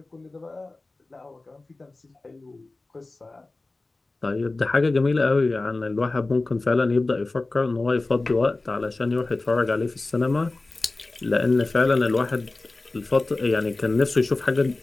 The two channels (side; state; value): right; quieter; 3.2 dB